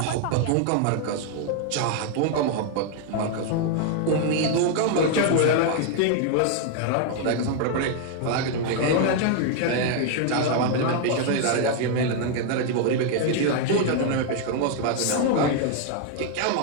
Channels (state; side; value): different; both; correlation 0.00